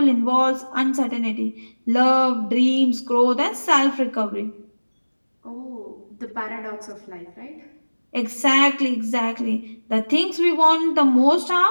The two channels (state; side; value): inverted; both; correlation -1.00